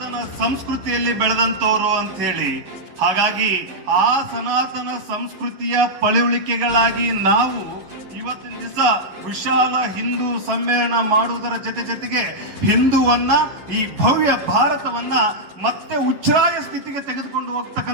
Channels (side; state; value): left; late; 11 ms